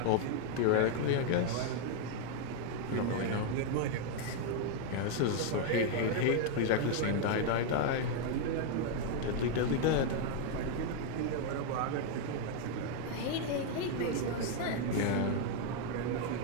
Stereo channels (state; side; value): different; both; correlation 0.00